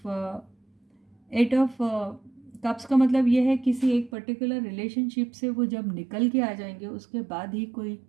एट ऑफ कप्स का मतलब ये है किसी एक पर्टिकुलर रिलेशनशिप से वो जब निकल के आ जाएंगे उसके बाद ही कोई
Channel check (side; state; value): left; drops out; at 4.1 s